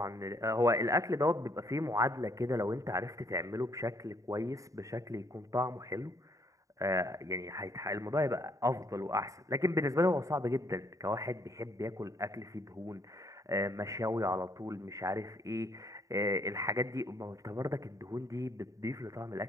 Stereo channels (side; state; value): left; late; 0.16 ms